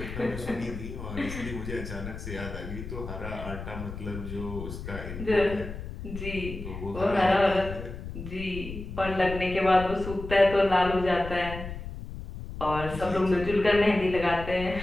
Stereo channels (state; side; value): noise; left; rumble, 9 dB below the sound